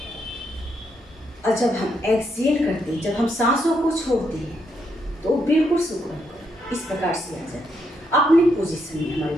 और जब हम एक्सहेल करते हैं, जब हम सांसों को छोड़ते हैं तो बिल्कुल सुकून इस प्रकार से आ जाती है, अपनी पोजीशन में हमारी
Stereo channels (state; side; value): normal; both; correlation 0.78